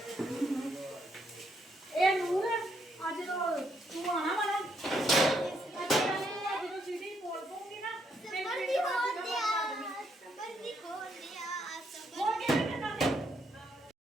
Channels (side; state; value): both; normal; correlation 0.75